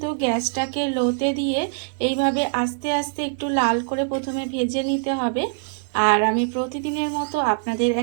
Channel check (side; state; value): left; silent; digital silence